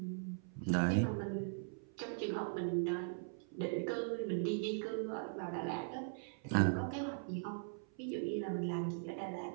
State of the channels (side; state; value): left; silent; 51 dB below the other